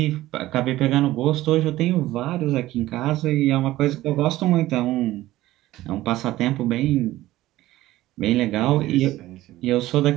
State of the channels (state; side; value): quieter; left; 16.1 dB